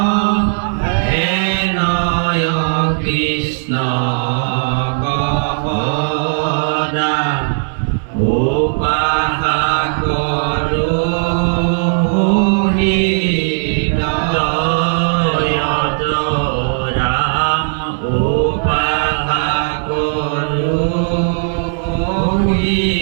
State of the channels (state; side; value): silent; left; digital silence